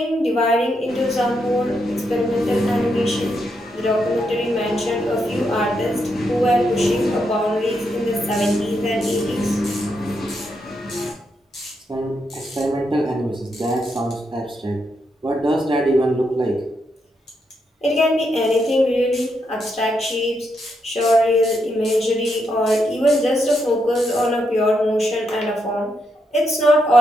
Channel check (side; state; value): both; normal; correlation 0.81